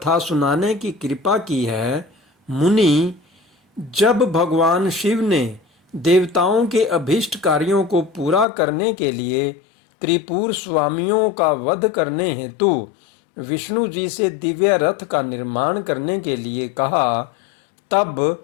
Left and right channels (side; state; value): right; drops out; at 8.5 s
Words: सुनाने की कृपा की है। मुनि, जब भगवान शिव ने देवताओं के अभीष्ट कार्यों को पूरा करने के लिए त्रिपुर स्वामियों का वध करने हेतु विष्णु जी से दिव्य रथ का निर्माण करने के लिए कहा,